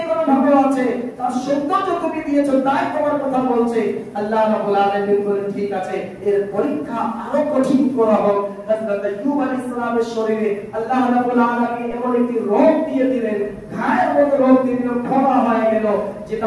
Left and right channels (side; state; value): both; identical; correlation 1.00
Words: কোনো ভালো আছে, তার সৌন্দর্য তুমি দিয়েছো, তাই তোমার কথা বলছে। আল্লাহ রাব্বুল আলামিন বলেন ঠিক আছে, এর পরীক্ষা আরো কঠিন করা হোক। হযরত আইয়ুব আলাইহিস সালামের শরীরে আল্লাহ রাব্বুল আলামিন এমন একটি রোগ দিয়ে দিলেন, ঘায়ের মতো রোগ দিয়ে দিলেন, ফোড়া হয়ে গেল, যেটা